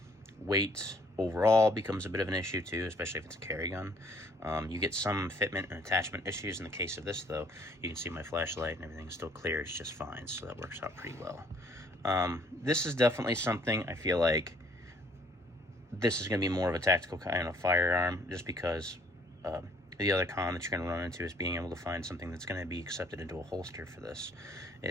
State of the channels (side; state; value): both; normal; correlation 0.61